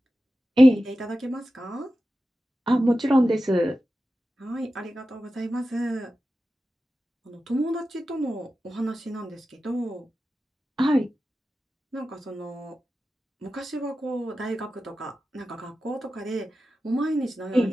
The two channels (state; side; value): normal; both; correlation 0.93